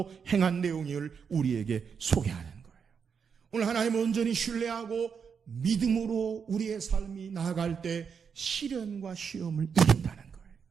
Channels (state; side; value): quieter; left; 6.5 dB